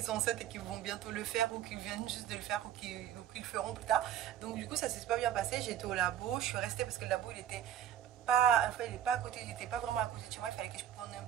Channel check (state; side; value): quieter; left; 10.7 dB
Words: sont enceintes et qui vont bientôt le faire ou qui viennent juste de le faire ou qui le feront plus tard. Donc du coup ça s'est super bien passé. J'étais au labo, je suis restée parce que le labo il était pas, enfin, il est pas à côté, il n'était pas vraiment à côté de chez moi, il fallait que je prenne un